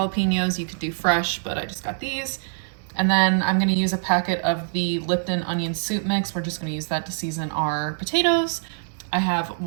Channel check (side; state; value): left; silent; digital silence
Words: You could do fresh, but I just got these. And then I'm gonna use a packet of the Lipton onion soup mix. We're just gonna use that to season our potatoes. I have